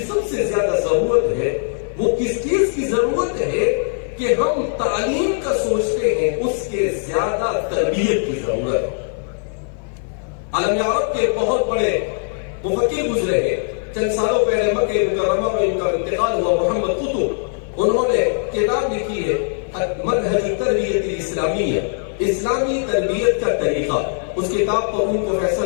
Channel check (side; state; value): right; silent; 56 dB below the other